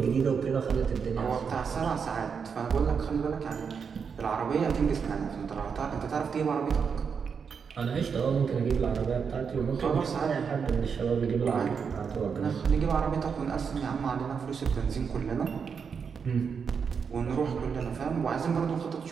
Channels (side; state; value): left; quieter; 6.2 dB